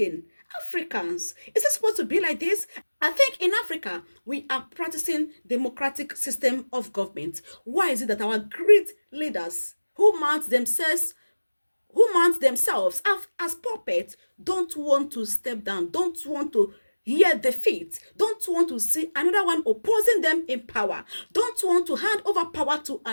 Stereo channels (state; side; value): inverted; both; correlation -1.00